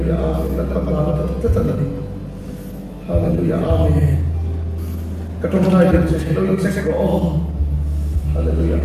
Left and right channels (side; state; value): both; identical; correlation 1.00